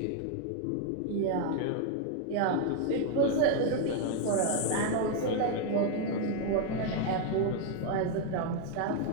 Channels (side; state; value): both; different; correlation 0.01